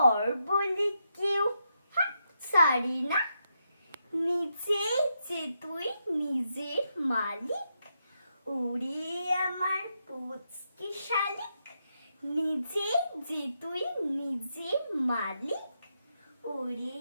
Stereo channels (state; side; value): inverted; both; correlation -0.83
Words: বলে কেউ ছাড়ি না। নিজেই যে তুই নিজের মালিক, ওরে আমার পুচকে শালিক। নিজেই যে তুই নিজের মালিক, ওরে